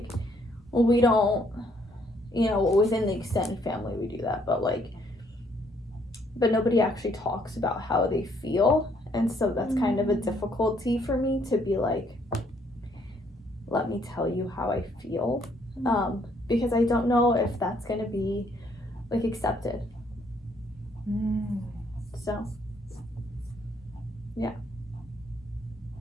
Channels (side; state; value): both; normal; correlation 0.67